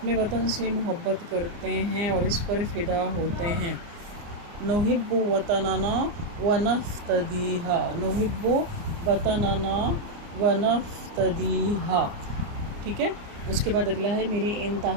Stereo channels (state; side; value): late; left; 29 ms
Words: وطن سے محبت کرتے ہیں اور اس پر فدا ہوتے ہیں۔ نحب وطننا ونفتدیہا، نحب وطننا ونفتدیہا، ٹھیک ہے۔ اس کے بعد اگلا ہے، میری